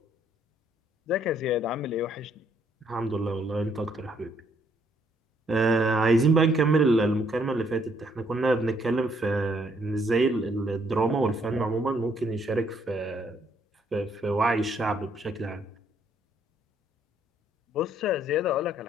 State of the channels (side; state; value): both; normal; correlation 0.69